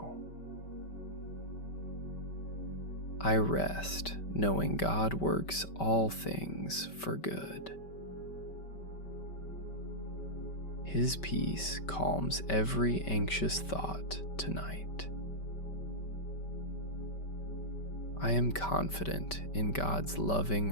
I rest knowing God works all things for good. His peace calms every anxious thought tonight. I am confident in God's loving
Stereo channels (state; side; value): late; right; 5.2 ms